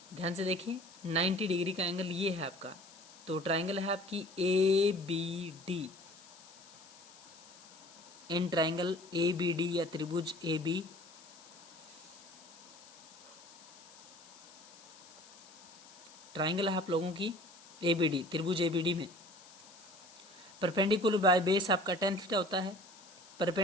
ध्यान से देखिए 90 डिग्री का एंगल ये है आपका। तो ट्राइंगल है आपकी A B D. In triangle A B D या त्रिभुज ए बी, ट्राइंगल है आप लोगों की ए बी डी, त्रिभुज ए बी डी में परपेंडिकुलर बाय बेस आपका tan थीटा होता है।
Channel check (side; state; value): left; noise; hiss, 21 dB below the sound